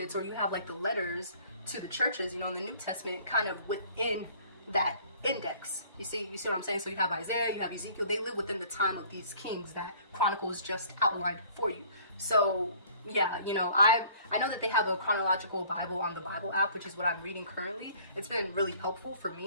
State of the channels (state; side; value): inverted; both; correlation -0.53